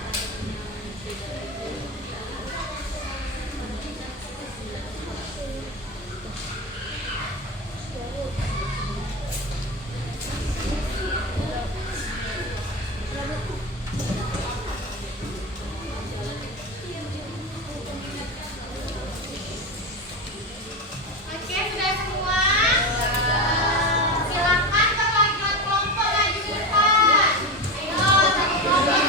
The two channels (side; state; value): both; normal; correlation 0.20